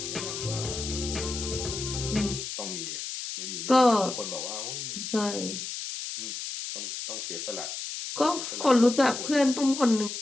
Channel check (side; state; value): left; noise; hiss, 6 dB below the sound